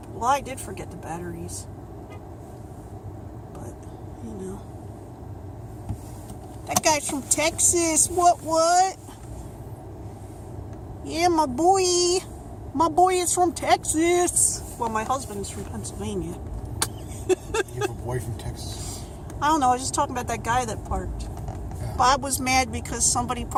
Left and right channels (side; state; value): both; identical; correlation 1.00